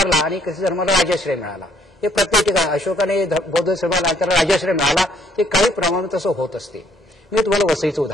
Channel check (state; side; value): normal; both; correlation 0.65